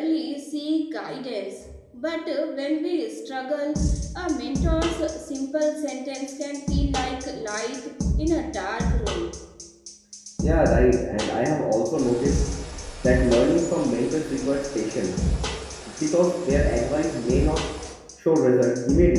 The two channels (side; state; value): both; identical; correlation 1.00